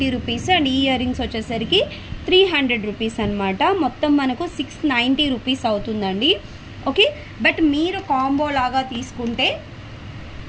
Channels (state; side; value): identical; both; correlation 1.00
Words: రూపీస్ అండ్ ఈ ఇయర్ రింగ్స్ వచ్చేసరికి 300 రూపీస్ అనమాట. మొత్తం మనకు 690 రూపీస్ అవుతుందండి. ఓకే, బట్ మీరు కాంబో లాగా తీసుకుంటే